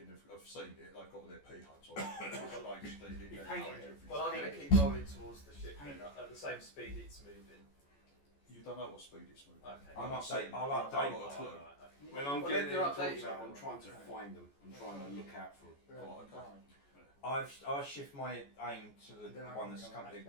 have seen it. They've got their pea hunts on. They painted it. Well, I'm going to keep rolling towards the ship then, at the same speed it's moving. You don't know what speed it's moving. Okay. I'll not saying- I'll I've update. got a clue. When I'm Well, getting then they're heading towards updated. her, I'm trying to find them. I'm trying to look out for them. Oh, okay. I'll shift my aim to the Then I one can that's go and currently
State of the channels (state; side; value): late; right; 14 ms